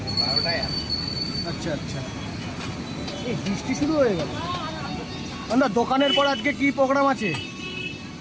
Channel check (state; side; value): identical; both; correlation 1.00